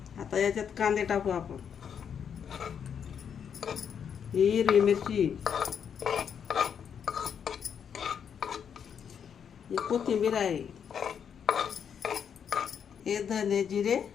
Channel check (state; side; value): quieter; right; 7.7 dB